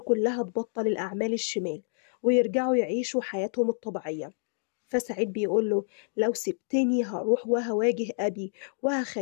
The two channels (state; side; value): silent; right; digital silence